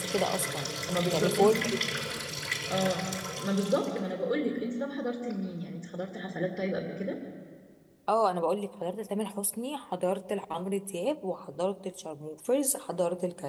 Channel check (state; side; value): identical; both; correlation 1.00